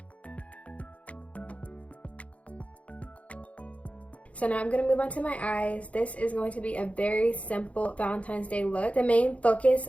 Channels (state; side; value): late; right; 0.065 ms